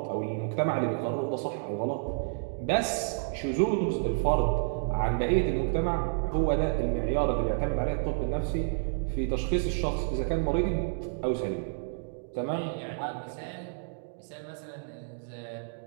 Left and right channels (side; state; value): left; silent; digital silence